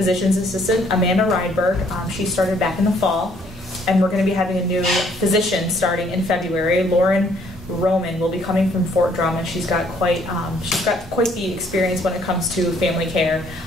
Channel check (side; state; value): both; normal; correlation 0.64